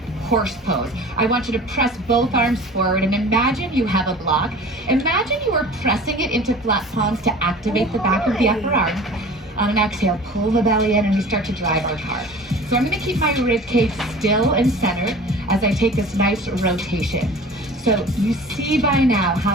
horse pose. I want you to press both arms forward and imagine you have a block. Imagine you are pressing it into flat palms to activate the back of the upper arm. On an exhale, pull the belly in and we start to drive our car. So I'm going to keep my rib cage still and centered as I take this nice rotation. So you see by now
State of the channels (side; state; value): both; normal; correlation 0.42